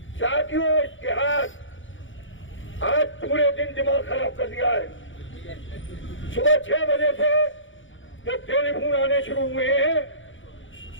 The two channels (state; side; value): late; right; 0.56 ms